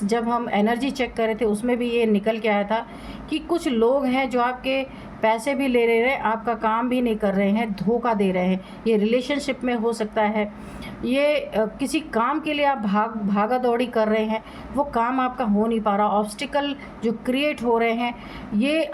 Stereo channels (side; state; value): both; identical; correlation 1.00